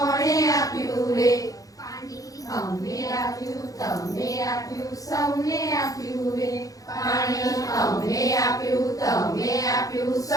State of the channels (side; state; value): right; late; 0.17 ms